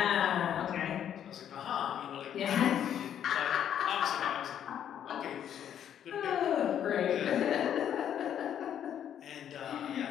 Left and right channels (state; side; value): quieter; right; 9.6 dB